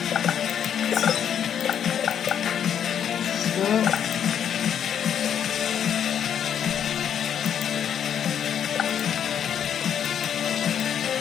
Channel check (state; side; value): quieter; right; 8.9 dB